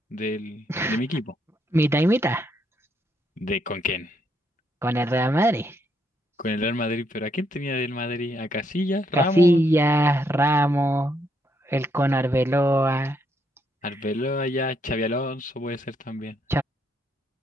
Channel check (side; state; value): both; normal; correlation 0.75